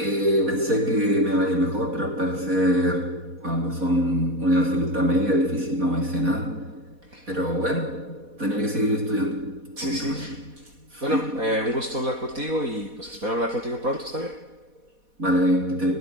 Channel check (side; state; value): left; late; 4.1 ms